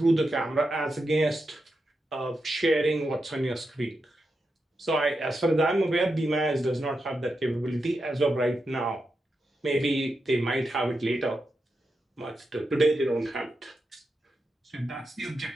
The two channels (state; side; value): normal; both; correlation 0.87